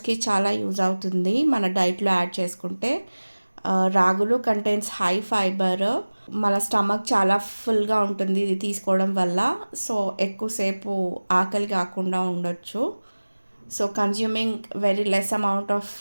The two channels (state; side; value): inverted; both; correlation -1.00